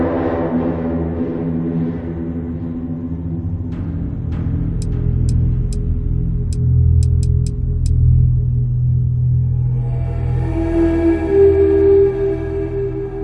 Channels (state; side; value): identical; both; correlation 1.00